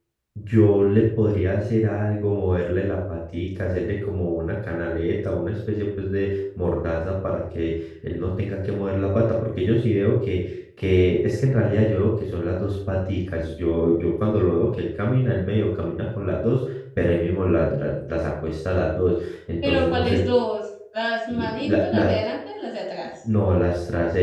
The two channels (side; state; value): both; identical; correlation 1.00